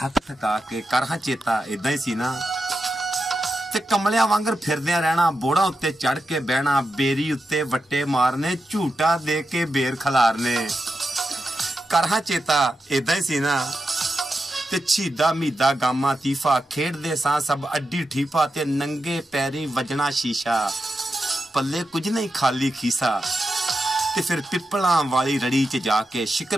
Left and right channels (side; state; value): both; normal; correlation 0.88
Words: ਥਕਾ ਕੇ। ਕਰ ਹਾਂ ਚੇਤਾ ਇਦਾਂ ਹੀ ਸੀ ਨਾ। ਤੇ ਕਮਲਿਆਂ ਵਾਂਗਰ ਫਿਰਦਿਆਂ ਰਹਿਣਾ, ਬੋੜਾਂ ਉੱਤੇ ਚੜ ਕੇ ਬਹਿਣਾ, ਬੇਰੀ ਉੱਤੇ ਵੱਟੇ ਮਾਰਨੇ, ਝੂਟਾ ਦੇ ਕੇ ਬੇਰ ਖਲਾਰਨੇ। ਕਰ ਹਾਂ ਚੇਤਾ ਇਦਾਂ ਹੀ ਸੀ ਨਾ। ਤੇ ਛੀਦਾ ਮੀਦਾ ਗਾਮਾ ਤੀਫਾ ਖੇਡਦੇ ਸਾਂ ਸਭ ਅੱਡੀ ਠੀਫਾ ਤੇ ਨੰਗੇ ਪੈਰੀ ਵਜਣਾ ਸ਼ੀਸ਼ਾ, ਪੱਲੇ ਕੁਝ ਨਹੀਂ ਖਾਲੀ ਖੀਸਾ। ਤੇ ਫਿਰ ਪਿੱਪਲਾਂ ਵਾਲੀ ਰੜੀ 'ਚ ਜਾ ਕੇ